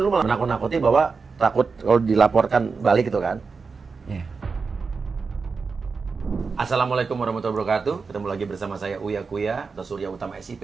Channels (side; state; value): left; quieter; 4.8 dB